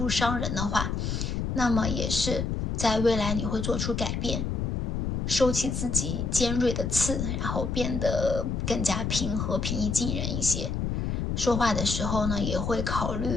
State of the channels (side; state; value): left; noise; rumble, 1 dB below the sound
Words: 伤人的话，那么也是在未来你会做出改变，收起自己尖锐的刺，然后变得更加平和、平易近人一些。说话的时候呢，也会考